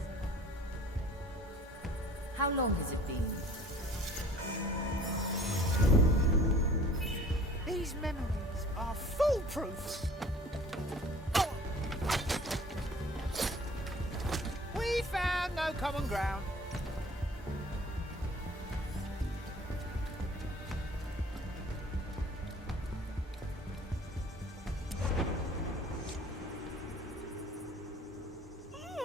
How long has it been? These memories are foolproof. Oh. We found no common ground.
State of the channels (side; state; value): both; normal; correlation 0.50